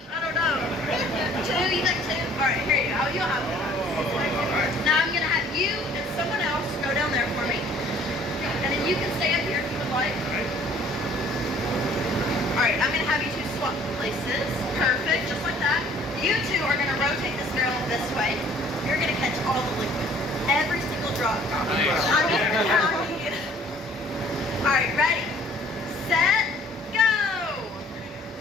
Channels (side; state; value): both; normal; correlation 0.55